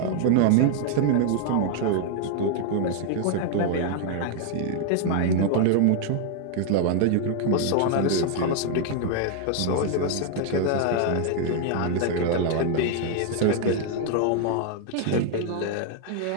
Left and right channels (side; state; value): both; different; correlation 0.00